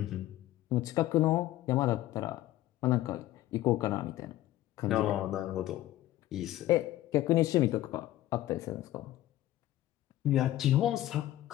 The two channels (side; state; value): right; quieter; 14.7 dB